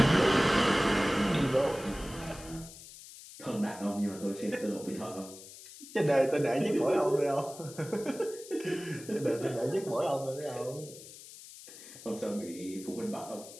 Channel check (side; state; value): left; noise; hiss, 16 dB below the sound